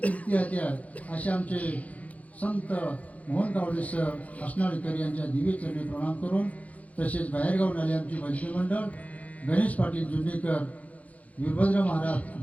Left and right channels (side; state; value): right; late; 0.069 ms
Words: होते. असे आमचे संत मोहन कावडे सर हसनाळीकर यांच्या दिव्य चरणी प्रणाम करून, तसेच बाहेरगावून आले आमचे भजनी मंडळ गणेश पाटील जुन्नीकर, वीरभद्र